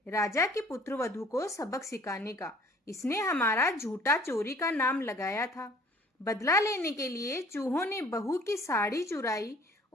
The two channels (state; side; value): normal; both; correlation 0.54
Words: राजा की पुत्रवधू को सबक सिखाने का। इसने हमारा झूठा चोरी का नाम लगाया था। बदला लेने के लिए चूहों ने बहू की साड़ी चुराई